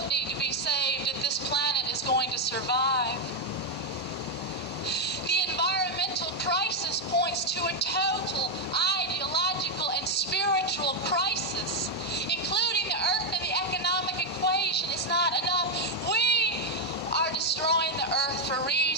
need to be saved if this planet is going to survive. The environmental crisis points to a total ideological and spiritual crisis. Including the earth in the economic equation is not enough. We are destroying the earth for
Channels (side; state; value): both; normal; correlation 0.03